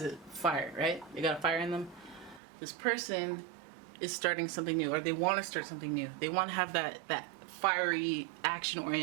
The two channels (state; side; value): drops out; left; at 2.4 s